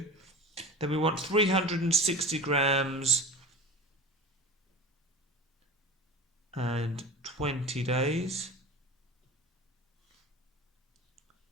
Then we want 360 grams and 20 days.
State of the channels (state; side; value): normal; both; correlation 0.34